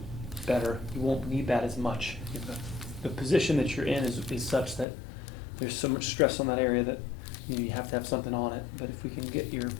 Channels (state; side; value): drops out; right; at 4.9 s